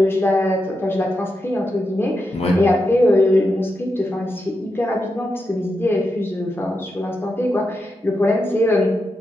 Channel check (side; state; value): both; normal; correlation 0.86